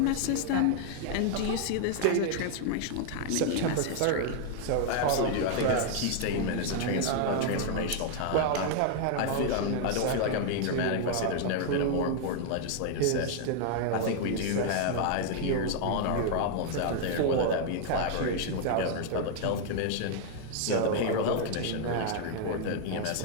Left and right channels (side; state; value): both; different; correlation 0.00